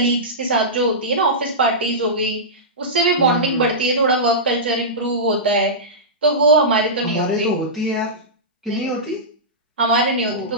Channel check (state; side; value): normal; both; correlation -0.15